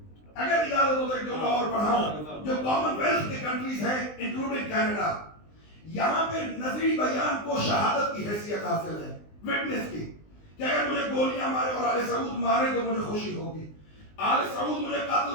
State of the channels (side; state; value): right; late; 19 ms